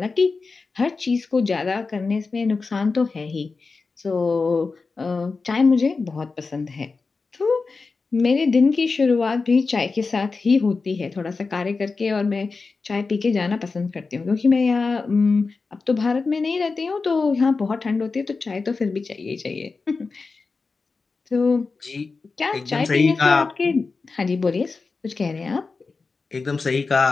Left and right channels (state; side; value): quieter; right; 4.3 dB